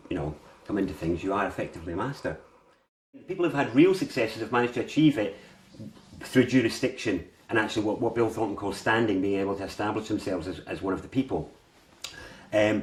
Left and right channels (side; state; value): both; identical; correlation 1.00